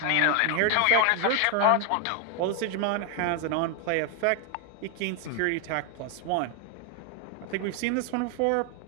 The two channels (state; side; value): different; both; correlation 0.01